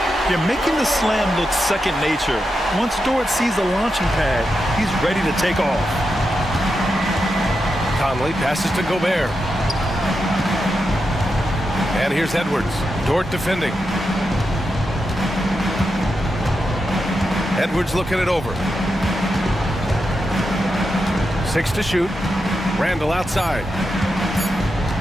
You're making the slam look second nature. Once Dort sees the launching pad, he's ready to take off. Conley passes to Gobert. And here's Edwards. Dort defending. Edwards looking it over. 6 to shoot. Randall outside.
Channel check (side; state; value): both; normal; correlation 0.87